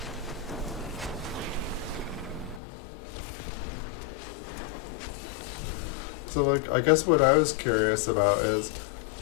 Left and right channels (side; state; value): right; drops out; at 2.6 s